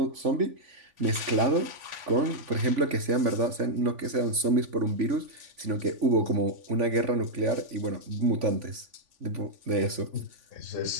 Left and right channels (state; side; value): late; left; 3.5 ms